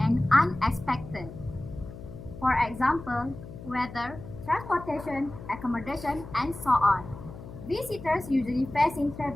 and unexpected. For example, weather, transportation, accommodation, and so on. Visitors usually facing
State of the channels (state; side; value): noise; left; hum, 14 dB below the sound